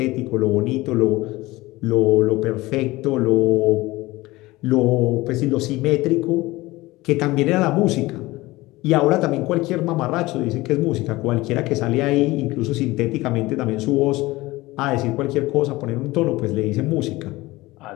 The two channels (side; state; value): right; quieter; 19.8 dB